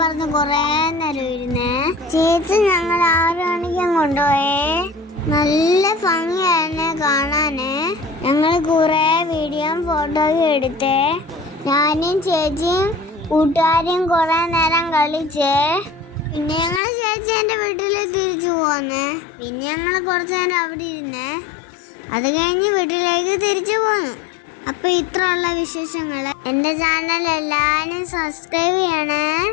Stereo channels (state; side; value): drops out; right; at 16.8 s